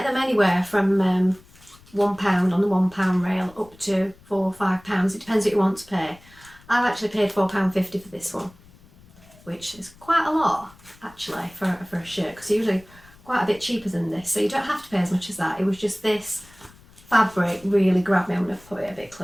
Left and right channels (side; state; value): left; noise; rumble, 26 dB below the sound